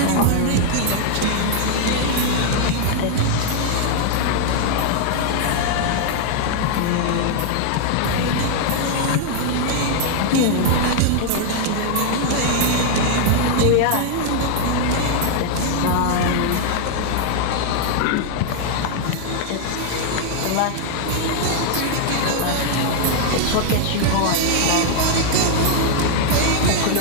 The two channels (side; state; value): both; different; correlation 0.00